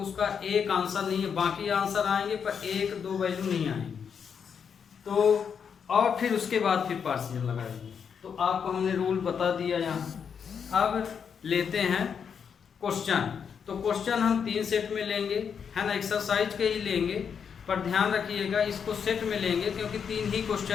एक आंसर नहीं है, बाकी आंसर आएंगे पर एक दो वैल्यू नहीं आएंगे। तो और फिर उसके बाद फिर पार्शियल लगाएंगे। तो आपको हमने रूल बता दिया यहाँ। अब लेते हैं क्वेश्चन। तो क्वेश्चन हम 3 सेट में लेंगे, है ना, एक्सरसाइज के ही लेंगे, पर ध्यान रखिएगा इसको सेट में लेंगे क्योंकि 3 ही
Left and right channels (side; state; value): right; quieter; 7.0 dB